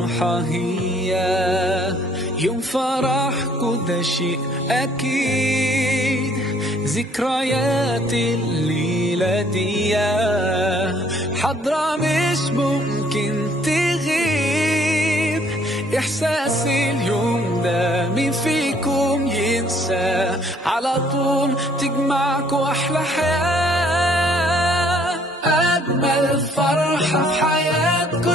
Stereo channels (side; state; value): both; normal; correlation 0.62